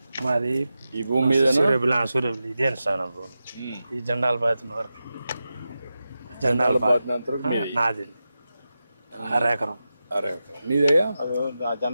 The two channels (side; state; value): both; inverted; correlation -0.92